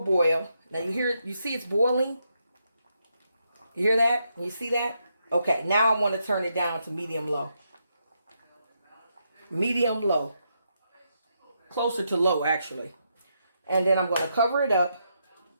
boil. Now you see it's boiling? You hear that? You see that? Okay, now I want to turn it down to medium low. Medium low. Closer to low, actually. And then I'm going to cover it up.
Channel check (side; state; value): both; inverted; correlation -0.81